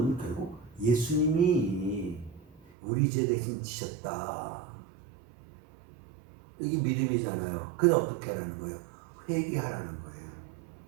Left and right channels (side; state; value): left; drops out; at 2.6 s